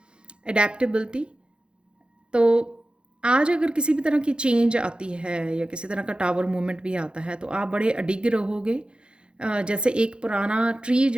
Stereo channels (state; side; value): late; left; 0.054 ms